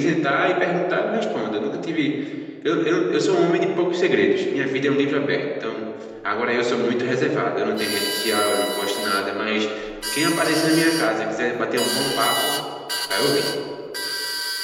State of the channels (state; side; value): identical; both; correlation 1.00